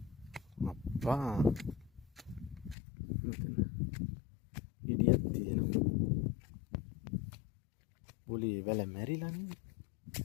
එකපාරක්. ඉඩියක් තියෙනවා. බුලි වල මැරිලා නේද?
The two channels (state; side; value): drops out; right; at 2.8 s